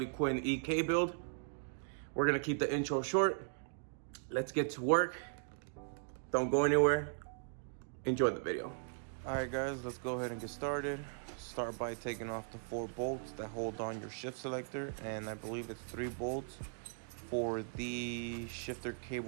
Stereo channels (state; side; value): silent; left; digital silence